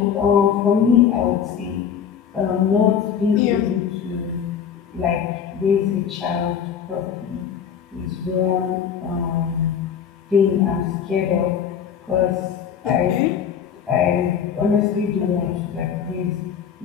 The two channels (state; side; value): quieter; right; 8.0 dB